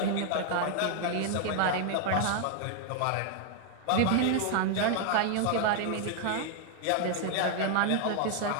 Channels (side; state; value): both; different; correlation 0.00